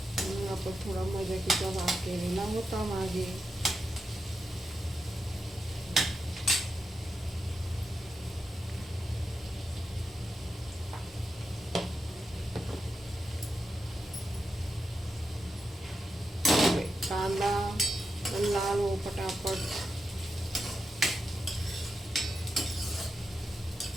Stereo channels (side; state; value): both; normal; correlation 0.87